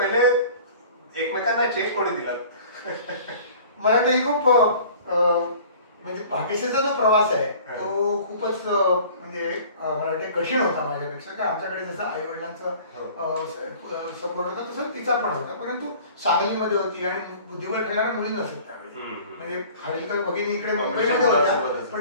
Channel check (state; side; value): inverted; both; correlation -0.47